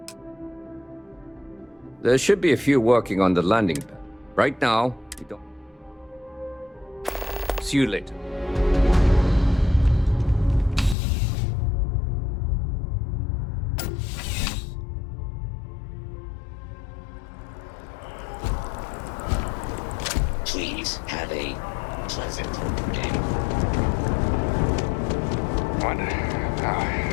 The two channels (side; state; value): right; drops out; at 11.0 s